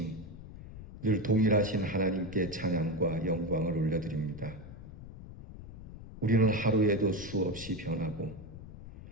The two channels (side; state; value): left; noise; rumble, 14 dB below the sound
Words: 늘 동일하신 하나님께 찬양과 영광을 올려드립니다. 우리는 하루에도 수없이 변하고